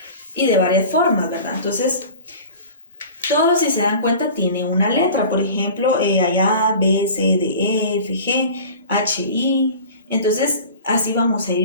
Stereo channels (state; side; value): inverted; both; correlation -0.39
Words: y de varias formas, ¿verdad? Entonces, todos, si se dan cuenta, tienen una letra. Por ejemplo, hay A, B, C, D, E, F, G, H, I. Entonces, así vamos a